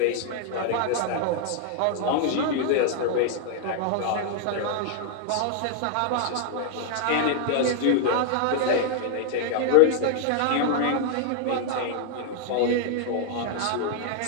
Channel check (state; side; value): different; both; correlation 0.00